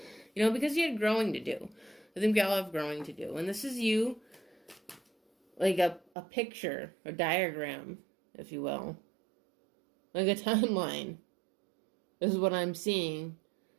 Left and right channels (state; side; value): drops out; left; at 6.1 s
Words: you know, because you had growing to do. I think we all have growing to do. And this is you, like a picture, a diagram, if you will, like a timeline is what I'm seeing